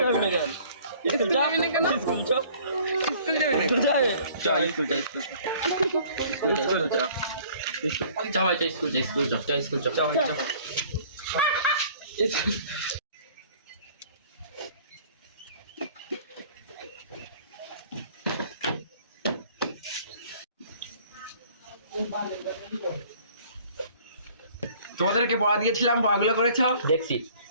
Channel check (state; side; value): inverted; both; correlation -0.53